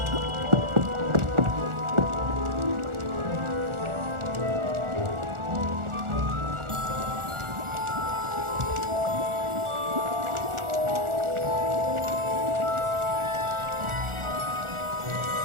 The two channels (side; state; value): left; late; 1.4 ms